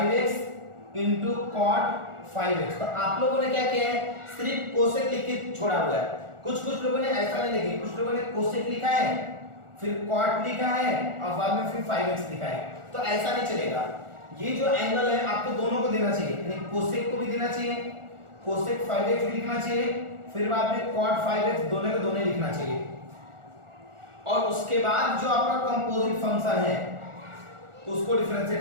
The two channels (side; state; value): left; late; 1.4 ms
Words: into cot 5x। तो आप लोगों ने क्या किया है, सिर्फ कोसेक लिख के छोड़ा हुआ है। कुछ लोगों ने ऐसा नहीं लिखा, कुछ लोगों ने कोसेक लिखा है, फिर कॉट लिखा है और बाद में फिर 5x लिखा है। तो ऐसा नहीं चलेगा, ये जो एंगल है आपको दोनों को देना चाहिए, यानी कोसेक को भी देना चाहिए, कोसेक 5x भी लिखना चाहिए, फिर बाद में cot 5x दोनों को दोनों लिखना चाहिए, और उसके बाद जो आपका कंपोजिट फंक्शन है उसको